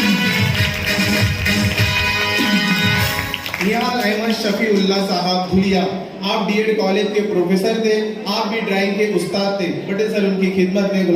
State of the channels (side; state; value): both; identical; correlation 1.00